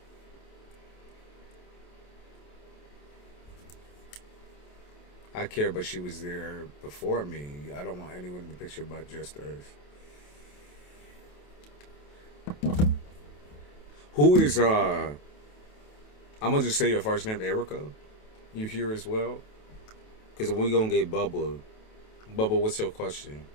I care, but she was there before me. I don't want anyone in the picture but just Earth. Who is I'm gonna just say your first name, Erica. You here as well? Because we're gonna get Bubba. Bubba, what's your question?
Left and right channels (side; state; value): right; late; 28 ms